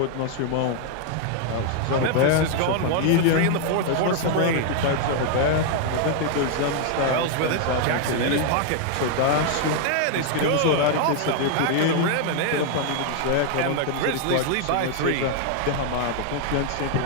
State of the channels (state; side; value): different; both; correlation 0.00